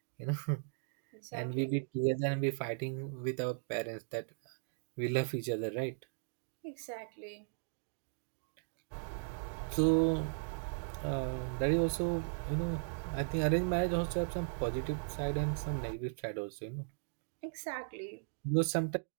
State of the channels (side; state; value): left; silent; digital silence